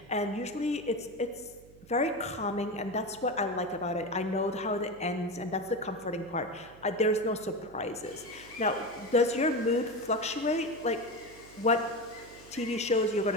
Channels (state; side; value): noise; right; hum, 22 dB below the sound